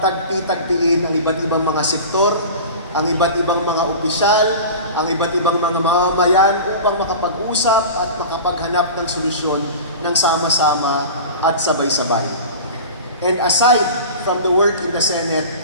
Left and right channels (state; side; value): inverted; both; correlation -0.34